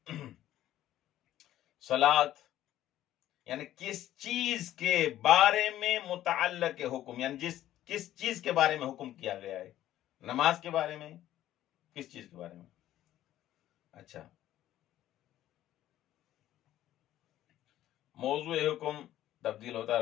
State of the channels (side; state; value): right; quieter; 13.1 dB